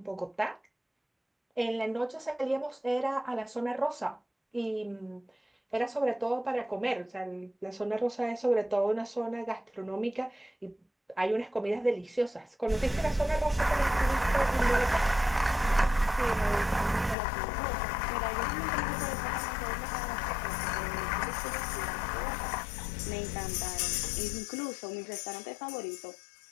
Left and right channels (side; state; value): right; drops out; at 17.2 s